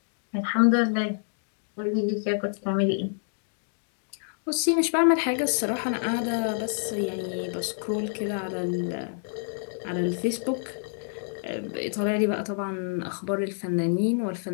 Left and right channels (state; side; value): silent; right; digital silence